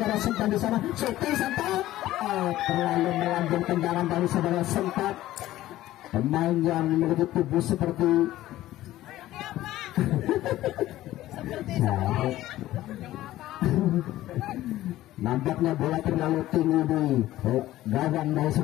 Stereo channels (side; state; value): right; quieter; 15.1 dB